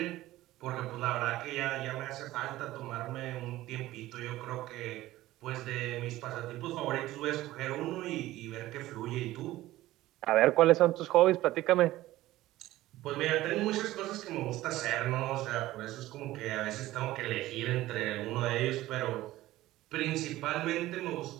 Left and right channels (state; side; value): quieter; left; 16.2 dB